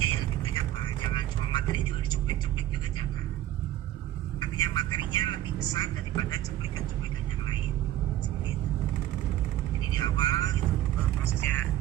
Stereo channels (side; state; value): left; quieter; 13.5 dB